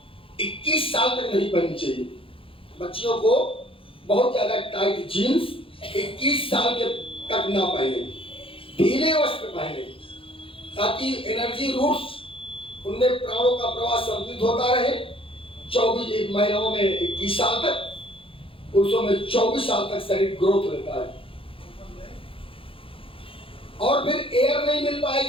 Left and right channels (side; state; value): right; late; 0.26 ms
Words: 21 साल तक नहीं पहननी चाहिए। बच्चियों को बहुत ज्यादा टाइट जीन्स 21 साल के तक ना पहने, ढीले वस्त्र पहने, ताकि एनर्जी रूट्स उनमें प्राणों का प्रवाह संतुलित होता रहे। 24 महिलाओं में 21 साल तक, पुरुषों में 24 साल तक शरीर ग्रोथ रहता है। और फिर एयर नहीं मिल